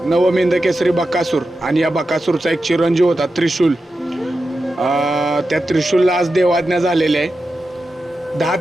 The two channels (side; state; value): both; normal; correlation 0.91